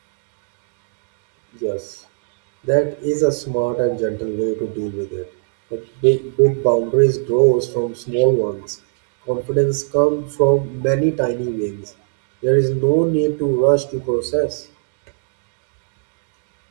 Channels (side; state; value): left; silent; digital silence